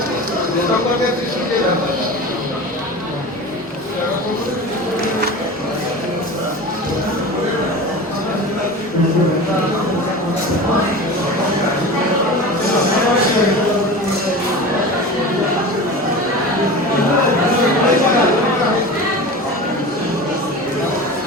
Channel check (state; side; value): normal; both; correlation 0.32